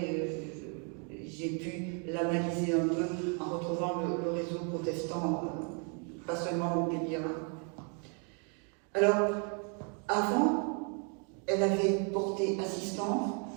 j'ai pu l'analyser un peu en retrouvant le réseau protestant, pas seulement montpelliérain. Alors, avant, elle avait porté assistance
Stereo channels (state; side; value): quieter; left; 39.1 dB